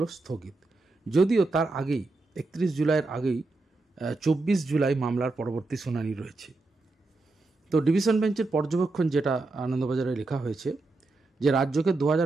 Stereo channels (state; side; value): quieter; left; 3.4 dB